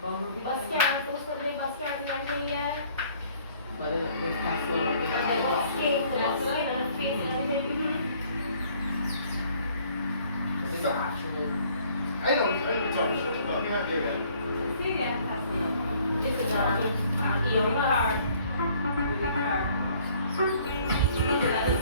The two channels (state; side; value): inverted; both; correlation -0.59